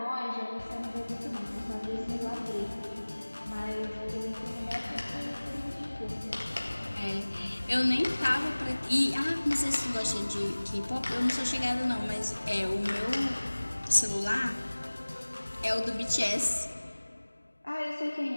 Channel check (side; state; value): both; inverted; correlation -1.00